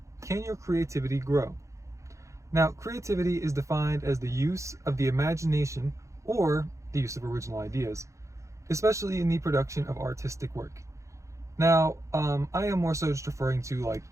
can your creativity grow? Now, creativity is defined as the use of the imagination or the use of original ideas, especially in the production of artistic work. Now, I am more so just referring to like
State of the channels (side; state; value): left; late; 0.15 ms